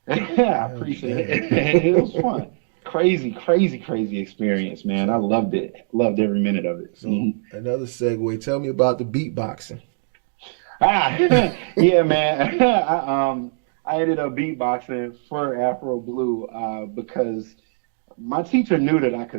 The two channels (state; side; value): silent; left; digital silence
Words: I appreciate it. It was fun. Crazy experience, man. I loved it. Loved every minute of it. So another segue. Tell me about the beatboxing. Yeah, man. I ended up beatboxing for Afro Blue because my teacher knew that I